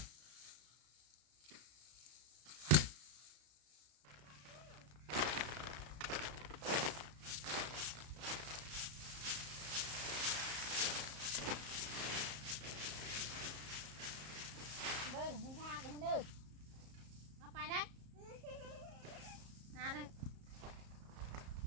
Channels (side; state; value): left; late; 34 ms